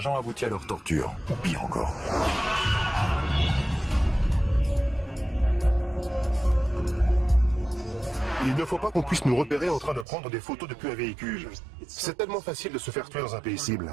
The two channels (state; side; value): drops out; left; at 10.1 s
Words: aboutit à leur torture, ou pire encore. Il ne faut pas qu'on puisse nous repérer en train de prendre des photos depuis un véhicule. C'est tellement facile de se faire tuer dans un pays